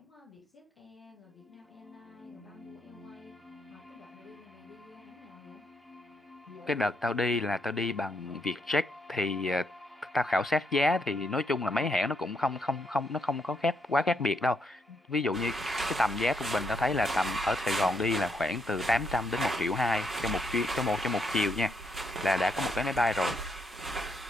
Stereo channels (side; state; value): both; normal; correlation 0.76